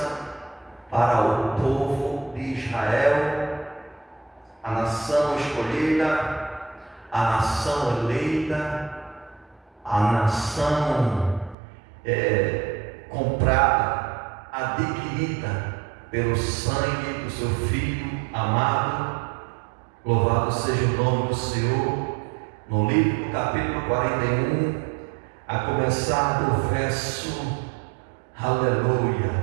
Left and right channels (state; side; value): drops out; left; at 11.6 s